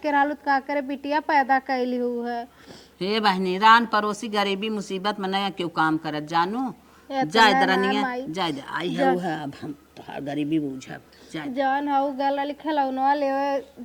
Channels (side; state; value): both; identical; correlation 1.00